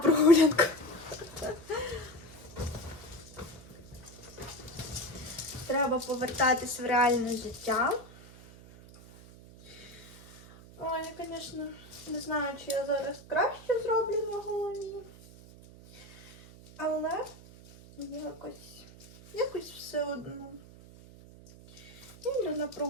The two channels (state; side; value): noise; right; hum, 19 dB below the sound